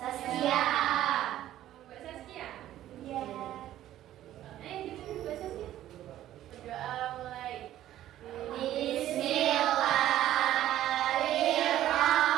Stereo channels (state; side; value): quieter; left; 13.0 dB